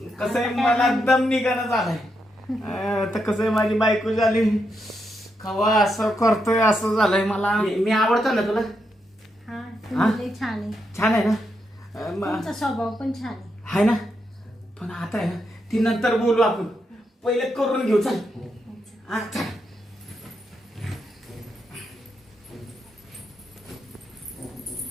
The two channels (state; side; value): normal; both; correlation 0.82